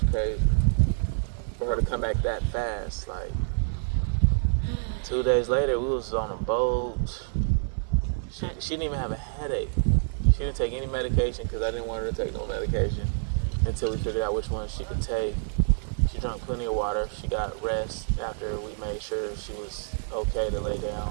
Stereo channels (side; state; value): left; silent; 55 dB below the other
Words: was crazy for her to come back that fast. Like 2 days later, we was on a boat. She didn't even have a headache. She didn't take any medication because I didn't want her to take no medication until we figured out which one she could take. She drank plenty of water. She got rest after we made sure she was okay to lay